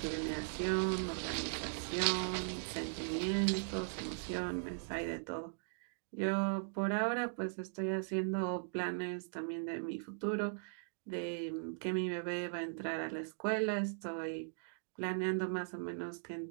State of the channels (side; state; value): left; silent; digital silence